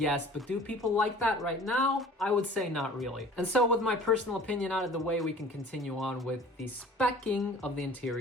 but do people like that right now? I would say not really. And so with my personal opinion out of the way, we can continue on with the specking of the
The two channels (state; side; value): normal; both; correlation 0.46